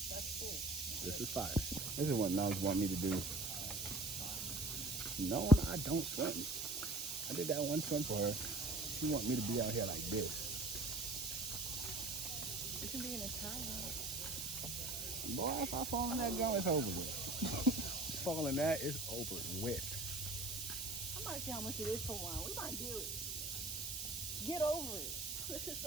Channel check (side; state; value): right; noise; hiss, 4 dB below the sound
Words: That's cool. This is fire. This is what Nubs want me to do. Knowing I don't swim. I did that one swim for her. She want me to be out here like this. You can be in a towel. Boy, if I fall in that gun, it's over with. Fall in that, it's over with. I might see how much it is for one. We might do it. Get over it. This is